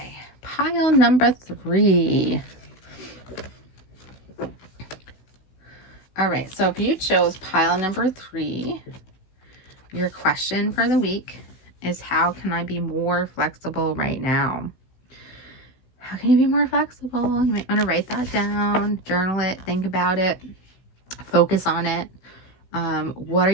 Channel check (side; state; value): right; late; 16 ms